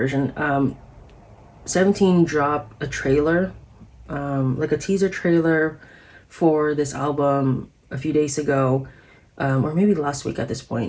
17 dropped a trailer, like a teaser trailer for this album a few days ago, or maybe last week at this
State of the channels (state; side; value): identical; both; correlation 1.00